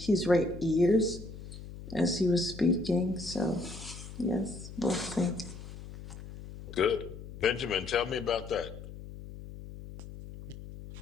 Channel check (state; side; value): noise; left; hum, 13 dB below the sound